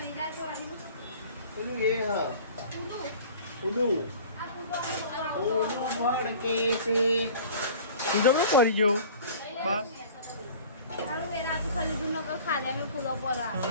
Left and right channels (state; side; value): inverted; both; correlation -0.44